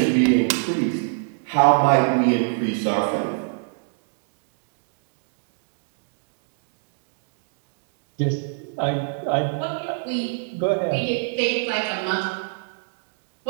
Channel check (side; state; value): left; silent; 62 dB below the other